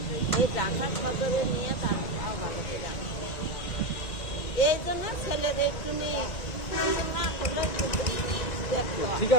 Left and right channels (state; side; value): late; right; 1.9 ms